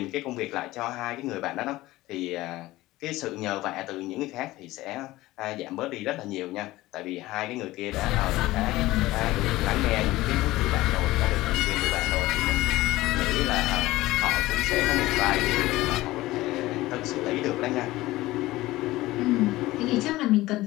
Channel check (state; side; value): quieter; right; 17.8 dB